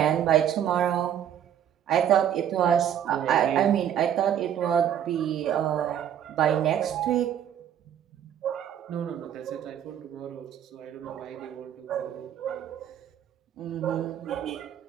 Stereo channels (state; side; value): quieter; left; 9.8 dB